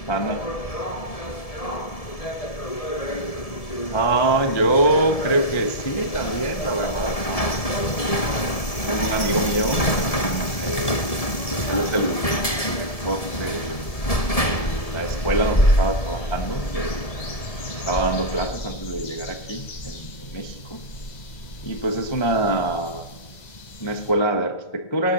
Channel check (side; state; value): right; late; 1.7 ms